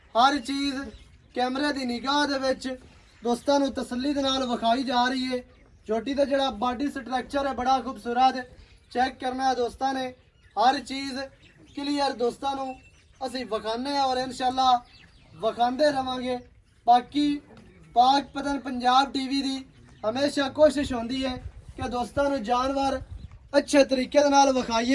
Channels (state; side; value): identical; both; correlation 1.00